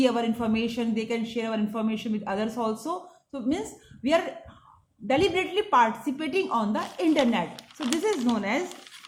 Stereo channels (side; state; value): both; identical; correlation 1.00